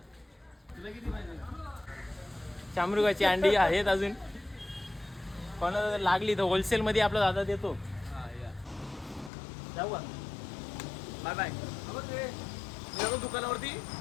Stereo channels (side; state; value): right; drops out; at 9.3 s